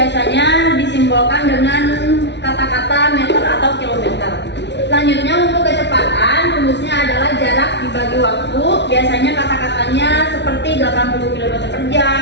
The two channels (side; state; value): right; late; 0.51 ms